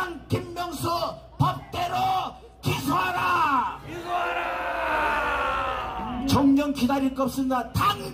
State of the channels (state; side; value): identical; both; correlation 1.00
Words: 김명수 법대로 기소하라. 정령 기다릴 거 없습니다.